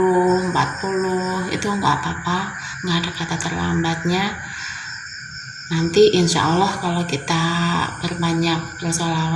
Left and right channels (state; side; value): identical; both; correlation 1.00